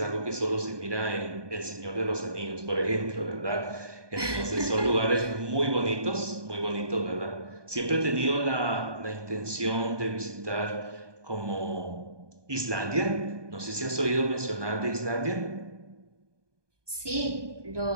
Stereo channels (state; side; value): late; left; 1.2 ms